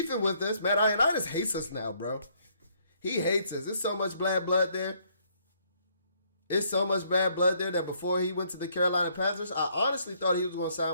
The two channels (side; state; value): both; inverted; correlation -0.67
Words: with us. Matt Ioannidis hates us now, bro. He hates us. There's so much bad blood there. It's so much bad blood there that before he went to the Carolina Panthers, I honestly thought he was going to